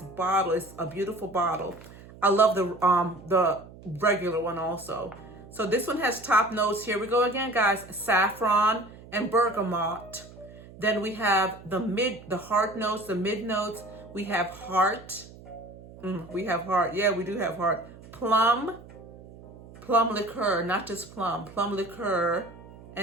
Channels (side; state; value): right; noise; hum, 19 dB below the sound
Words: bottle. It's a beautiful bottle. I love the regular one also. So this one has top notes. Here we go again, guys. Saffron and bergamot. Then we have the heart notes, the mid notes. We have heart. We have heart. Yeah, we do have heart. Plum liqueur, not just plum liqueur,